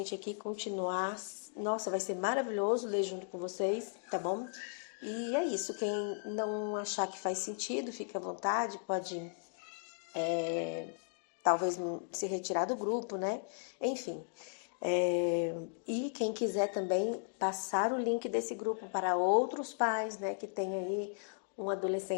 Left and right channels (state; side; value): silent; right; digital silence